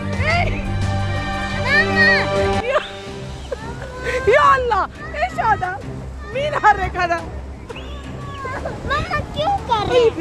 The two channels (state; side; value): identical; both; correlation 1.00